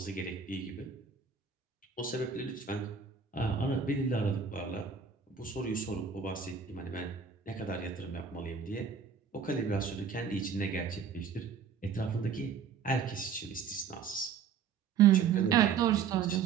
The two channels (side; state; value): left; quieter; 6.5 dB